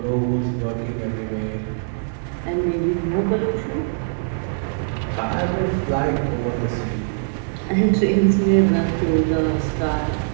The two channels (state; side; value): silent; left; 62 dB below the other